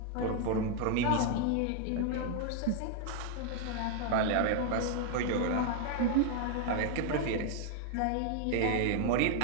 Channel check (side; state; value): both; different; correlation 0.00